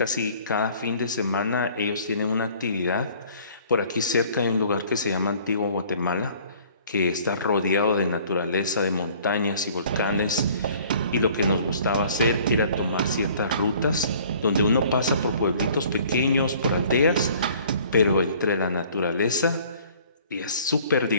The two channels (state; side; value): inverted; both; correlation -0.54